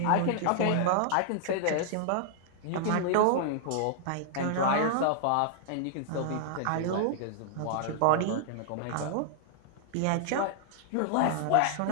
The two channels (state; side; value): different; both; correlation -0.01